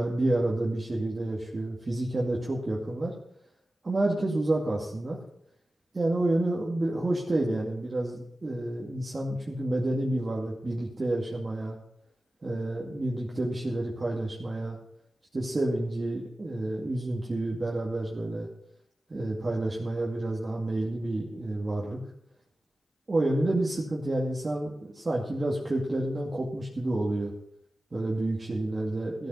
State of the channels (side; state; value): both; normal; correlation 0.95